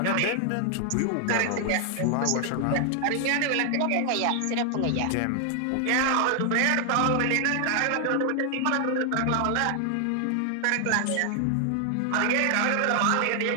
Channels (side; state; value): both; different; correlation 0.00